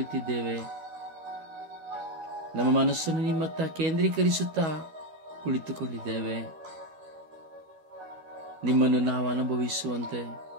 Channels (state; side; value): late; left; 12 ms